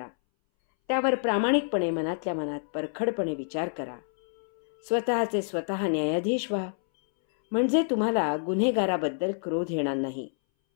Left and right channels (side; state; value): right; silent; 60 dB below the other